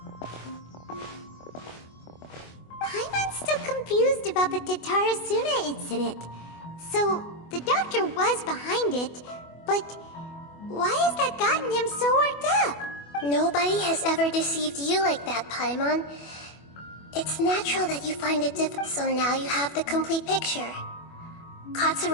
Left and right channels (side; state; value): right; late; 24 ms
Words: Paimon's still confused about the Tatarasuna incident. So, the doctor was behind it, but why has that gotten him so worked up? Nobody has ever deceived you like that, Paimon. It's natural that you find it difficult, so now you have the complete picture.